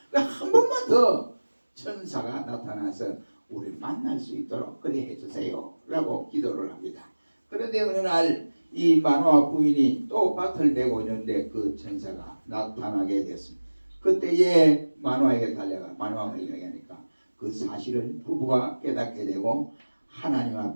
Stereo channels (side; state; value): both; inverted; correlation -1.00